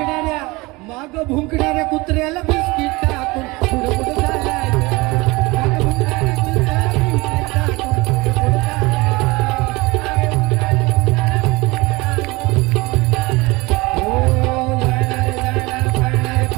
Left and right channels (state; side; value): quieter; left; 23.2 dB